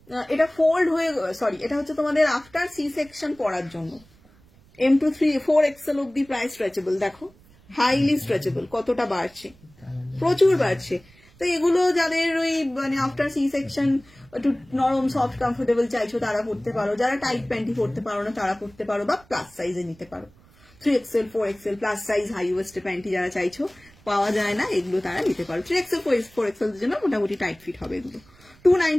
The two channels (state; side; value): noise; right; rumble, 27 dB below the sound